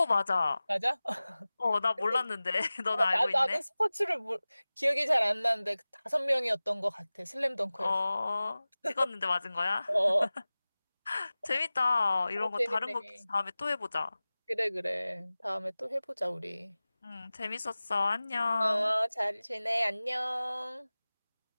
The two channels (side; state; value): both; inverted; correlation -0.98